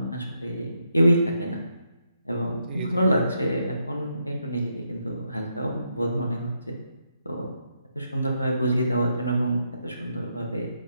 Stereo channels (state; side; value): inverted; both; correlation -0.79